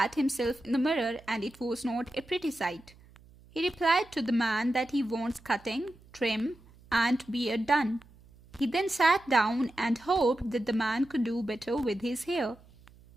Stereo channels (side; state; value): right; noise; hum, 25 dB below the sound